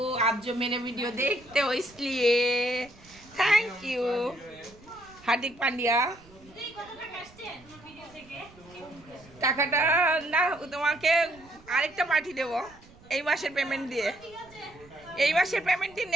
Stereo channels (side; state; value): right; noise; rumble, 24 dB below the sound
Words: आप जो मेरे वीडियो देखते हो इसलिए थैंक यू। हार्दिक पांड्या, টাকাটা না তোমাকে আরেকটা পার্টি দেবো এই মাসের পেমেন্ট দিয়ে। এই মাসের পেমেন্ট দিয়ে